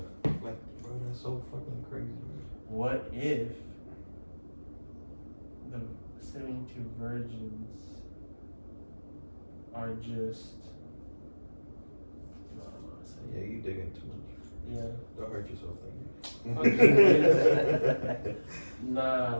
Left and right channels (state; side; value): inverted; both; correlation -1.00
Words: like bro, that's so fucking crazy. Man. What if the 72 virgins are just? No, I'm not saying. Yeah, you digging too much. Yeah. Don't hurt yourself, Nah,